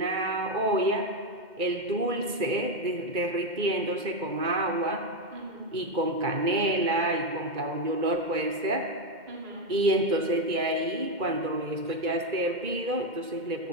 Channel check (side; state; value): left; late; 2.1 ms